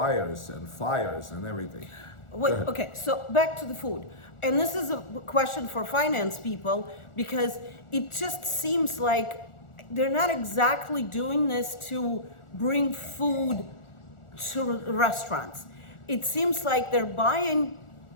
and fires and everything. Wait, okay, so back to the food. And this is a question for finance people, because it just seems like they're not exactly doing this to bring food to restaurants. It seems like they're buying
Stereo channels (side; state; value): right; late; 1.4 ms